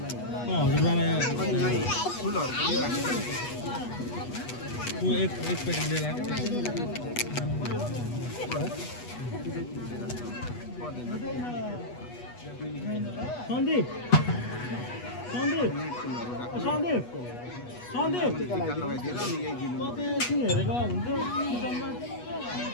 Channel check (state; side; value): late; right; 8.2 ms